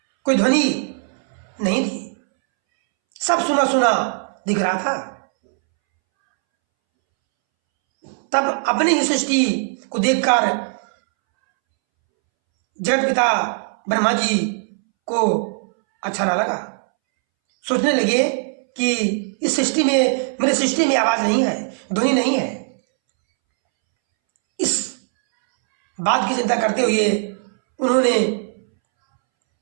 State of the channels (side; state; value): left; silent; 65 dB below the other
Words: कोई ध्वनि नहीं थी, सब सुना सुना दिख रहा था। तब अपनी ही सृष्टि को देखकर जगत पिता ब्रह्मा जी को अच्छा ना लगा। सोचने लगे कि इस सृष्टि में, मेरे सृष्टि में आवाज नहीं है, ध्वनि नहीं है। इस बात की चिंता करते हुए उन्होंने